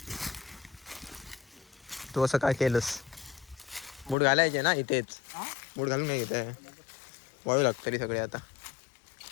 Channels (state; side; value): drops out; right; at 4.2 s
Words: तू असं काय केलंस. मूड घालायचे ना इथेच. मूड घालून नाही घेत वाळू लागतं तरी सगळे. आता